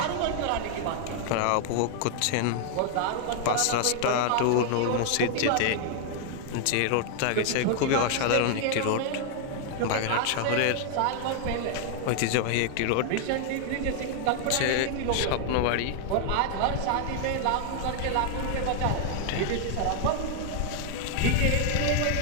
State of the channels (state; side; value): different; both; correlation 0.00